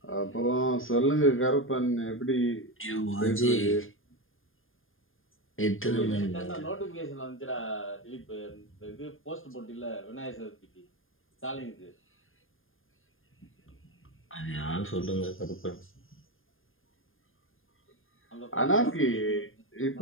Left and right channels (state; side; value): late; right; 0.59 ms